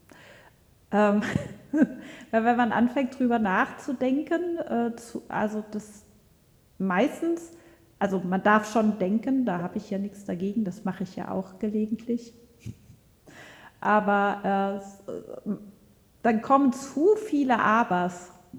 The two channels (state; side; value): identical; both; correlation 1.00